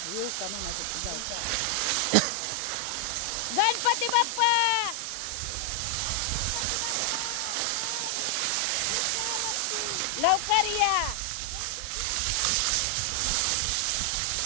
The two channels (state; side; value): different; both; correlation 0.00